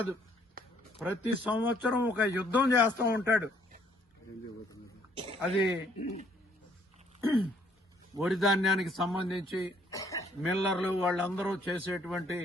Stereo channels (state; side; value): normal; both; correlation 0.65